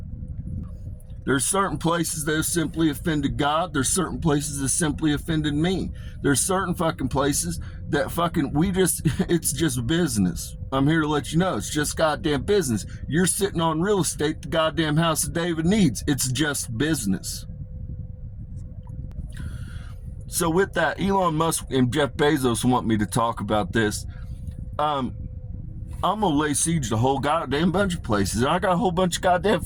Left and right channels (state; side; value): identical; both; correlation 1.00